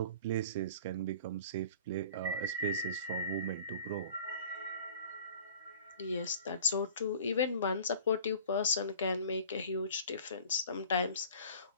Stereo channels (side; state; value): both; inverted; correlation -0.43